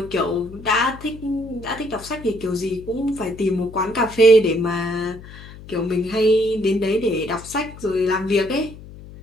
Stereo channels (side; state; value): left; noise; hum, 17 dB below the sound